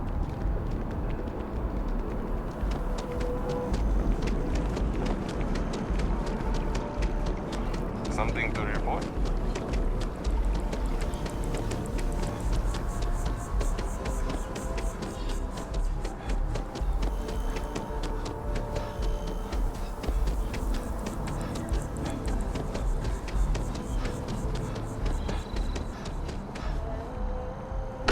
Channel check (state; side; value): identical; both; correlation 1.00